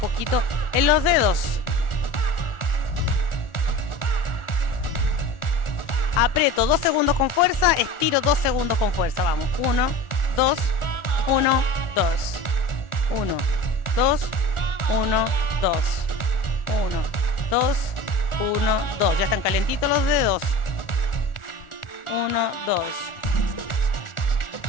en los dedos. Aprieto 2 segundos con fuerza, estiro 2 segundos con fuerza. Vamos. 1, 2, 1, 2. 1, 2, 1, 2. 1, 2, 1, 2. Ya están calentitos los dedos. 1, 2.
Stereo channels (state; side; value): late; right; 1.4 ms